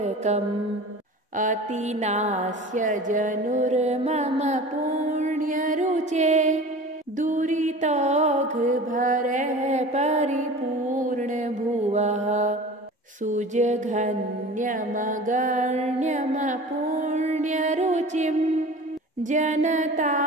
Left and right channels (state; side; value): normal; both; correlation 0.38